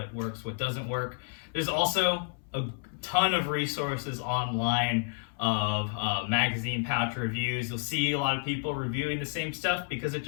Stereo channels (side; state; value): right; silent; 58 dB below the other